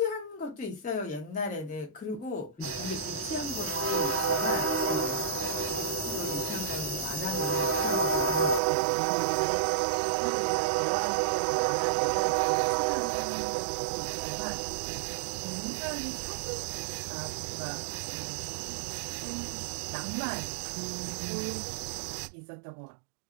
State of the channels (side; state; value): left; drops out; at 8.6 s